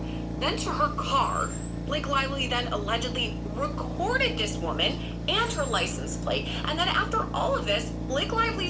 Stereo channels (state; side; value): identical; both; correlation 1.00